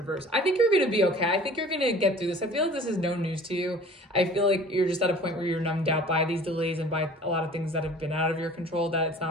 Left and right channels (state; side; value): normal; both; correlation 0.46